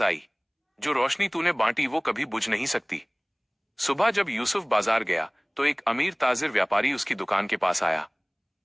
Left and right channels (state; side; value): identical; both; correlation 1.00